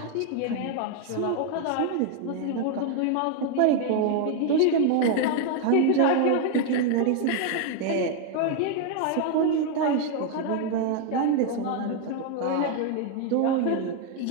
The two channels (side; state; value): both; different; correlation 0.01